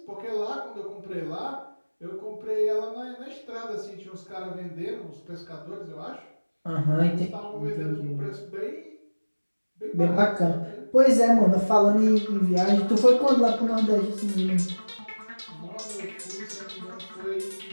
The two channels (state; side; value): inverted; both; correlation -1.00